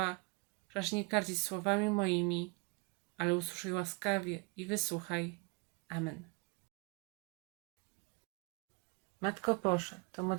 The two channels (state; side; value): quieter; left; 29.0 dB